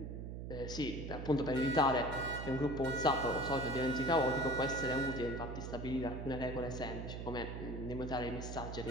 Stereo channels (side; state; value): right; noise; hum, 7 dB below the sound